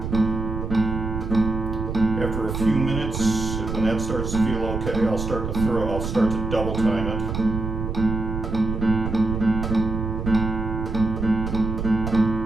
After a few minutes, when that starts to feel okay, I'll start to double time it.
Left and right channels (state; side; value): noise; right; rumble, 4 dB below the sound